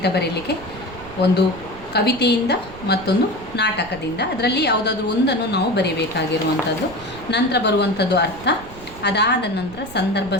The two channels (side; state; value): right; noise; rumble, 18 dB below the sound